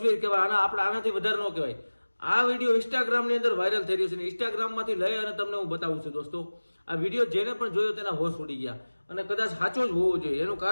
કહેવાય, આપણે આનાથી વધારે ન કહેવાય. આ વિડીયો ઇન્સ્ટાગ્રામની અંદર વાયરલ થઈ રહ્યો છે. ઇન્સ્ટાગ્રામમાંથી લઈ અને તમને હું બતાવું છું. દોસ્તો આ વિડીયો જેને પણ જોયો તેના હોશ ઉડી ગયા, અને કદાચ સાચો જ હોવો જોઈએ. એનું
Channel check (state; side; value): inverted; both; correlation -1.00